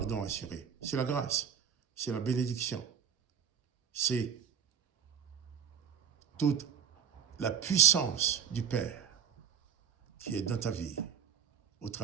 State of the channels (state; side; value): quieter; left; 8.0 dB